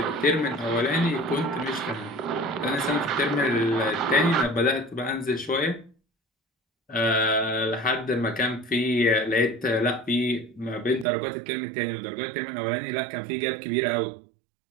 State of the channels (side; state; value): left; drops out; at 11.1 s